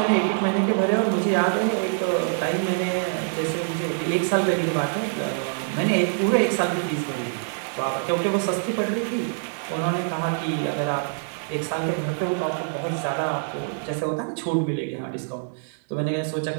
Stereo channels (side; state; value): left; silent; 62 dB below the other